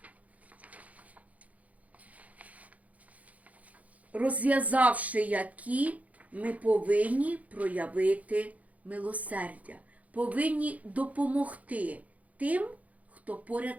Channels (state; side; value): late; left; 0.071 ms